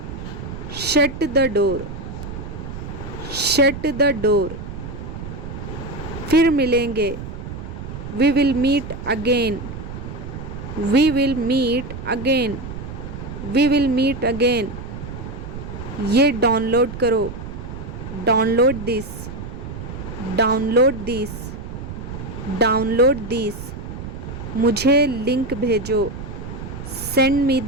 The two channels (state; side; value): noise; right; rumble, 9 dB below the sound